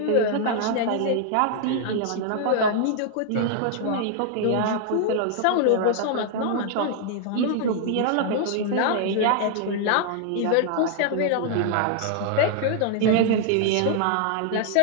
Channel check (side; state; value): both; different; correlation 0.00